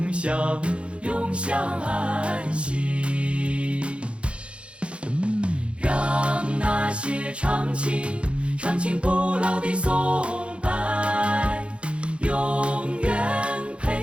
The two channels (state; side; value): late; left; 0.059 ms